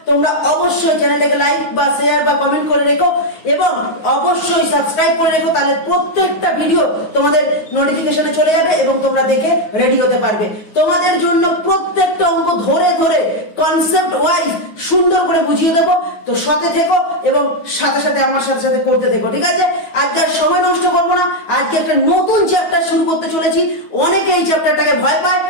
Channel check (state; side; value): late; right; 9.4 ms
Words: তোমরা অবশ্যই চ্যানেলটাকে লাইক বা শেয়ার বা কমেন্ট করে রেখো এবং অবশ্যই সাবস্ক্রাইব করে রেখো, তাহলে প্রত্যেকটা ভিডিও তোমাদের নোটিফিকেশনে চলে যাবে এবং তোমরা দেখে রেডি হতে পারবে। তোমাদের জন্য প্রত্যেকটা অঙ্ক ধরে ধরে কনসেপ্ট ওয়াইজ সুন্দর করে বুঝিয়ে দেবো। তো সাথে থেকো এবং সাথে সাথে আমার সাথে করতে থেকো, ঠিক আছে? আজকে আর সময় নষ্ট করবো না, আজকে একটা নতুন চ্যাপ্টার শুরু করতে চলেছি। অনেকে এই চ্যাপ্টারটাকে ভয় পায়